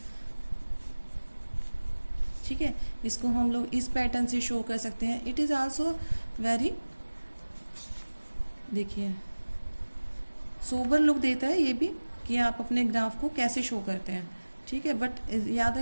ठीक है, इसको हम लोग इस पैटर्न से शो कर सकते हैं। इट इज़ आल्सो वेरी, देखिए सोबर लुक देता है ये भी कि आप अपने ग्राफ को कैसे शो करते हैं, ठीक है। बट याद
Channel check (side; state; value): both; inverted; correlation -1.00